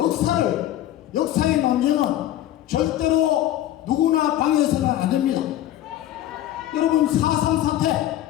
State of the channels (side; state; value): right; quieter; 13.1 dB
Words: 역사의 논쟁은 절대로 누구나 방해해서는 안 됩니다. 여러분, 4.3